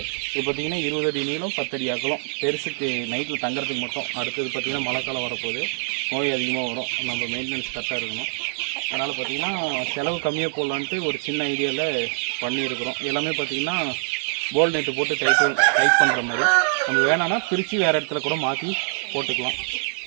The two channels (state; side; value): silent; left; digital silence